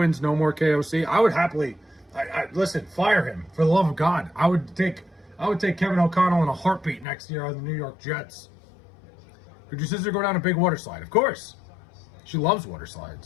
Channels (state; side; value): drops out; right; at 7.1 s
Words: no more KOC, I would happily, listen, fire him for the love of God. I would take Kevin O'Connell in a heartbeat next year on the New York Jets. Could your sister go down a big water slide? Of course. She loves water